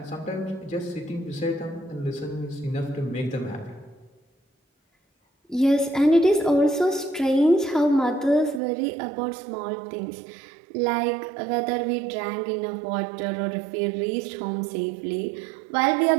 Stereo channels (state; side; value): drops out; left; at 8.6 s